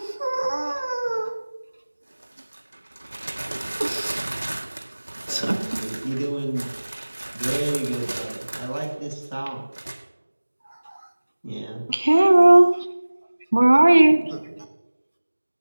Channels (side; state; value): both; inverted; correlation -1.00